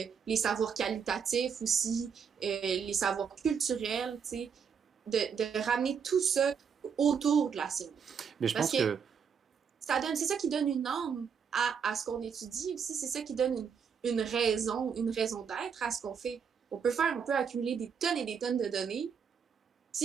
savoirs qualitatifs aussi, les savoirs culturels, tu sais, de ramener tout ça autour de la science. Mais je pense que c'est ça qui donne une âme à ce qu'on étudie aussi, c'est ça qui donne une raison d'être à ce qu'on fait. On peut accumuler des tonnes et des tonnes de données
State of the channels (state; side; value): quieter; left; 6.7 dB